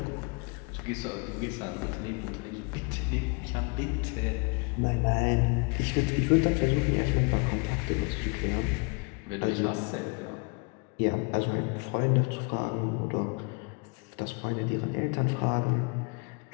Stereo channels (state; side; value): quieter; right; 32.9 dB